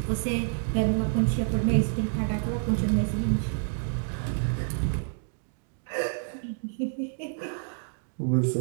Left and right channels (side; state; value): left; silent; digital silence